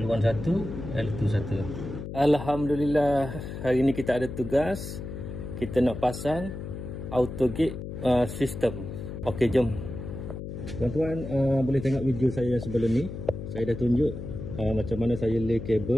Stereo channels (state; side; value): noise; left; hum, 8 dB below the sound